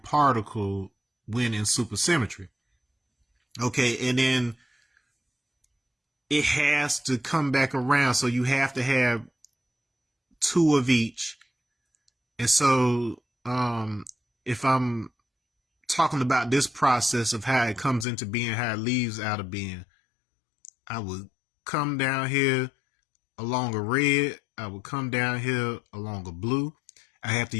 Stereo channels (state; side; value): drops out; right; at 18.1 s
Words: when in supersymmetry. Okay, and then it has to come back around, so you have to have 2 of each. And so if I'm talking about this process of how it comes into being, how it leaves out of being, I would come down here along a red, I would come down here along a blue. I have to